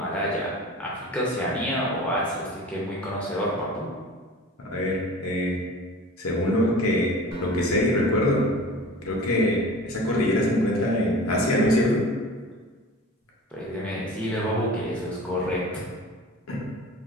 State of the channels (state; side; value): normal; both; correlation 0.39